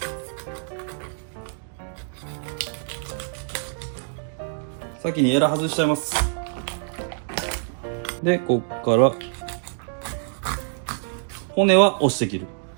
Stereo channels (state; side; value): silent; left; digital silence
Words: 先にエラ外しちゃいます。で、こっから骨は押して切る。